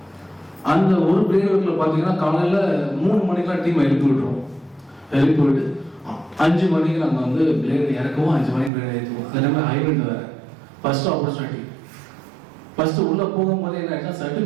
அந்த ஒரு பிளேட் ஒர்க்கில் பார்த்தீங்கன்னா காலையில் 3 மணிக்கெலாம் டீம் எழுப்பி விட்டுருவோம். எழுப்பி விட்டு 5 மணிக்கு நாங்கள் வந்து பிளேடு இறக்கவும் 5 மணிக்கு பிளேடு ஏற்றுவோம். அது எல்லாமே ஹைபிரிட் வேறு. ஃபர்ஸ்ட் ஆப்பர்ச்சுனிட்டி ஃபர்ஸ்ட் உள்ளே போகும்போது என்ன ஆயிடுச்சுன்னா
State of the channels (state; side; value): drops out; left; at 8.7 s